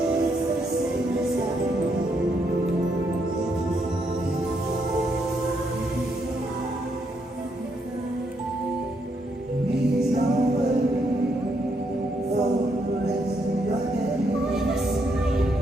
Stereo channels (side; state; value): both; normal; correlation 0.76